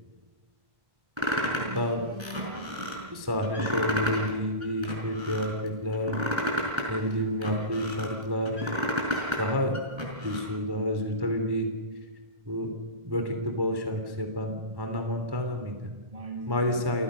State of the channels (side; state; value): left; late; 1.3 ms